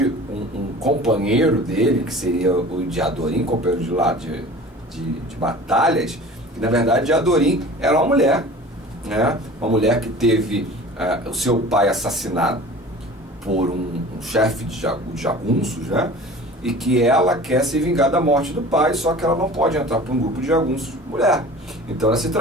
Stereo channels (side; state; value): both; normal; correlation 0.41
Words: um companheiro dele, que seria o Diadorim, companheiro de lá de batalhas, que na verdade Diadorim era uma mulher, né? Uma mulher que teve o seu pai assassinado por um chefe de jagunços, né? E que ela quer se vingar da morte do pai, só que ela não pode entrar para um grupo de jagunços mulher. Então ela se